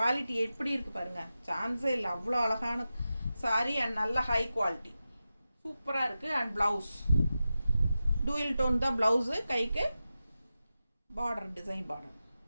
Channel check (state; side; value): inverted; both; correlation -0.92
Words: எப்படி இருக்குது பாருங்கள், சான்ஸே இல்லை. அவ்வளோ அழகான சாரீ அண்ட் நல்ல ஹை குவாலிட்டி, சூப்பராக இருக்குது. அண்ட் ப்ளவுஸ் டூயல் டோன் தான் ப்ளவுஸு, கைக்கு பார்டர் டிசைன் பார்டர்